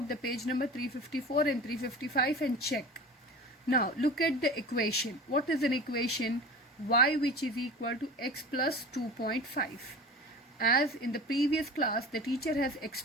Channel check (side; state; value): both; normal; correlation 0.36